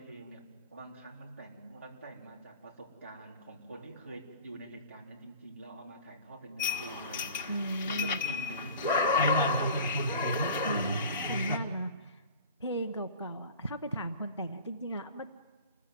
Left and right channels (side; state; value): both; inverted; correlation -0.41